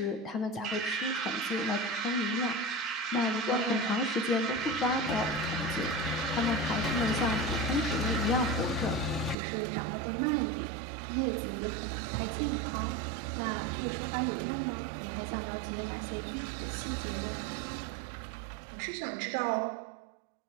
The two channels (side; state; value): left; drops out; at 9.3 s